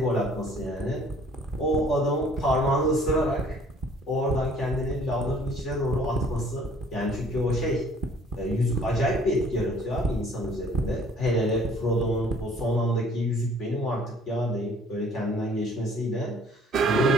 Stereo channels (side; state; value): both; normal; correlation 0.56